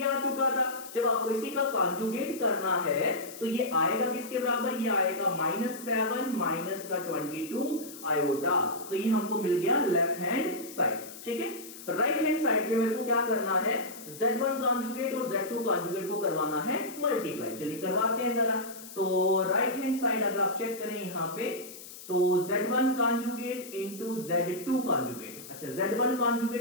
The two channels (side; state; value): left; noise; hiss, 15 dB below the sound